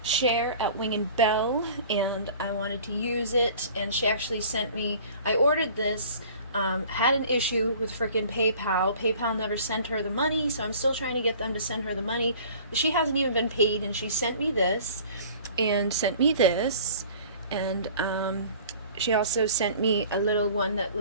Cher at Wing and Bell, and I wanted to use it, and she actually sent me, I ordered this, had an issue with frickin' PayPal. PayPal never sent her the money, so I'm still trying to get them to send her the money. She hasn't even been paid, and she sent me this and sent me this, and she also sent me a little one that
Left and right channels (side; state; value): both; inverted; correlation -0.47